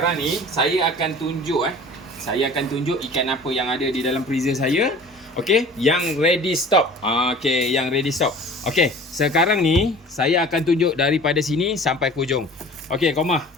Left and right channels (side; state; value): both; normal; correlation 0.44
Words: ni saya akan tunjuk saya akan tunjuk ikan apa yang ada di dalam freezer saya. Okey, yang ready stop. Okey, yang ready stop. Okey, sekarang ni saya akan tunjuk daripada sini sampai ke hujung. Okey, Komah.